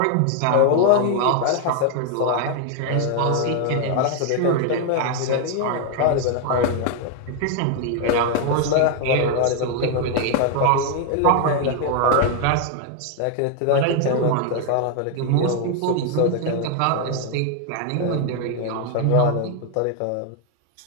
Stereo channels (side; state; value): both; different; correlation 0.00